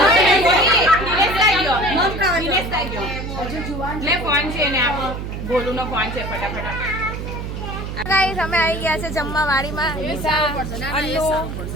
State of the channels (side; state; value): right; noise; hum, 6 dB below the sound